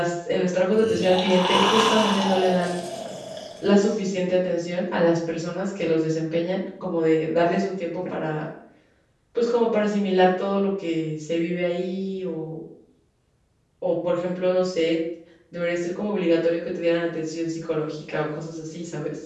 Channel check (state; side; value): identical; both; correlation 1.00